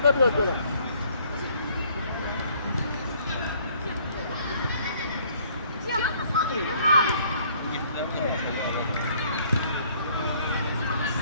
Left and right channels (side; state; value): both; inverted; correlation -0.61